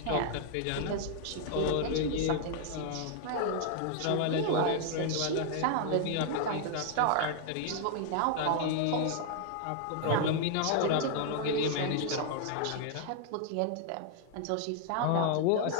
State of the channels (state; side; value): different; both; correlation 0.00